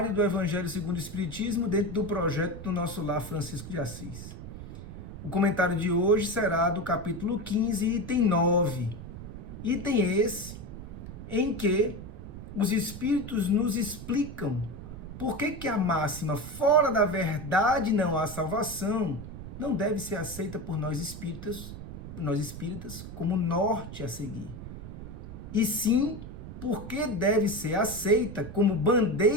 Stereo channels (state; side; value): noise; right; rumble, 11 dB below the sound